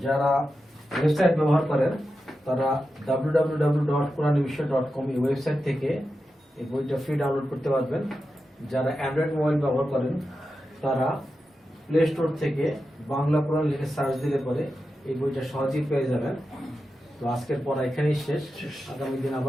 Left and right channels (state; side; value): normal; both; correlation 0.90